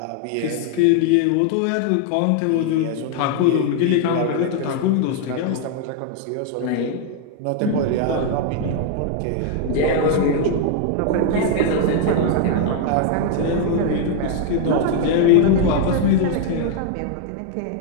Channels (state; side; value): different; both; correlation 0.00